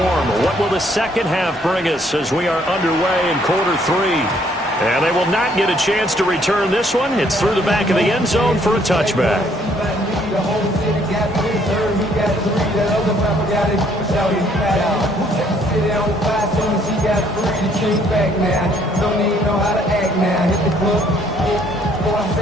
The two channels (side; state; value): both; normal; correlation 0.65